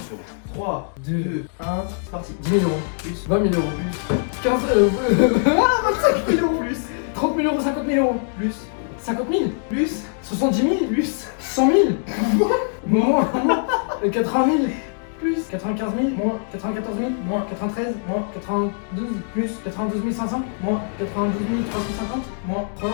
frérot. 3, 2, 2, 1, c'est parti. 10 000 euros. Plus, 20 000 euros. plus, 15, 25 000 euros, plus, 30 000 euros, 50 000 euros. plus, 50 000. plus, 70 000. plus, 100 000. Moins. 80 000. plus, 95 000. moins, 94 000. moins, 93. moins, 92. plus, 92 500. moins, 92 350. moins,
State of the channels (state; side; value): silent; right; digital silence